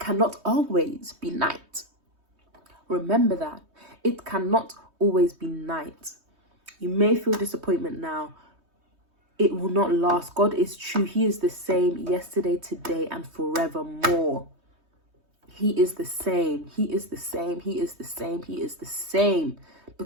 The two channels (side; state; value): left; late; 3.2 ms